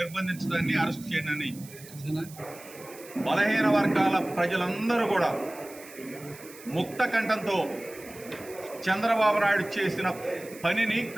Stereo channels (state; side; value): noise; right; hiss, 19 dB below the sound